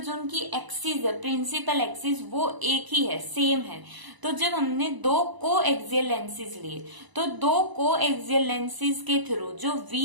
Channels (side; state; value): left; late; 1.0 ms